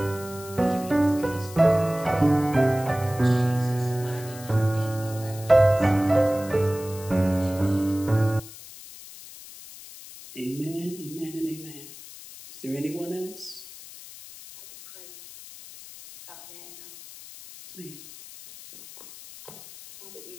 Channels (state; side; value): noise; left; hiss, 16 dB below the sound